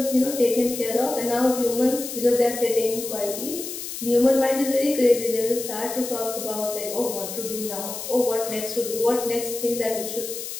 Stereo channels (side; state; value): left; noise; hiss, 8 dB below the sound